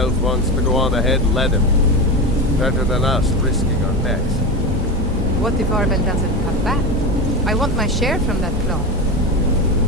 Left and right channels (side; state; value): both; normal; correlation 0.20